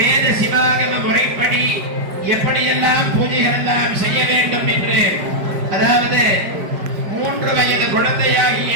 சிவாகம முறைப்படி எப்படியெல்லாம் பூஜைகள் எல்லாம் செய்ய வேண்டும் என்று, அதாவது 3 வயது குழந்தையாகிய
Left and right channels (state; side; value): late; left; 5.0 ms